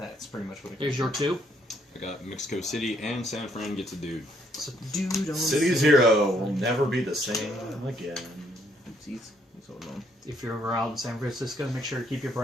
pretty much what it Here's your 2. I got Mexico City and San Fran gets a dude. So, dude, on City Zero will never be the same again. Oopsies. What's going on? If you're ever out in San Francisco, make sure to keep your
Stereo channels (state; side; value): normal; both; correlation 0.69